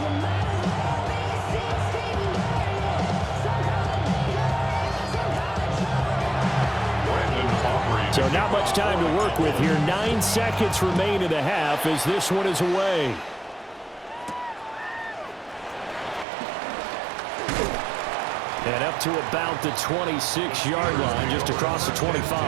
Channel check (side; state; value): left; drops out; at 16.2 s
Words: So not much time to work with here. 9 seconds remain in the half as this one is away. And up to about the 26-yard line, just across the 25.